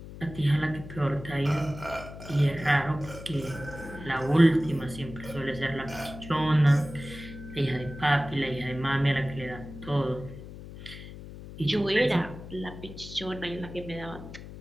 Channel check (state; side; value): noise; left; hum, 13 dB below the sound